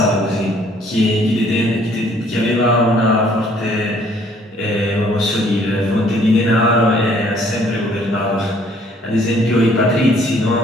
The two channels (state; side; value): normal; both; correlation 0.61